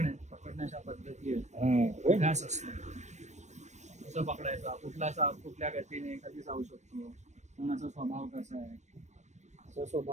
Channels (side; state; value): left; late; 0.34 ms